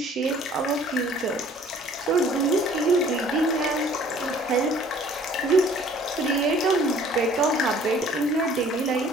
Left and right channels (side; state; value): both; normal; correlation 0.54